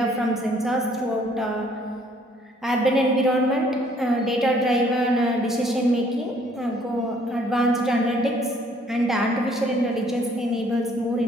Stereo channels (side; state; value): both; normal; correlation 0.62